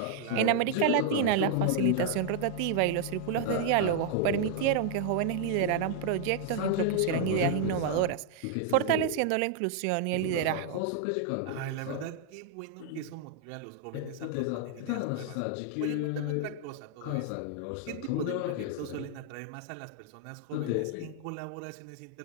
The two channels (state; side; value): different; both; correlation 0.00